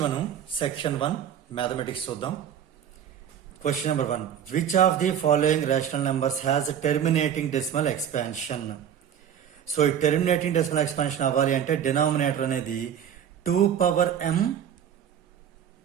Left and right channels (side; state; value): left; quieter; 9.1 dB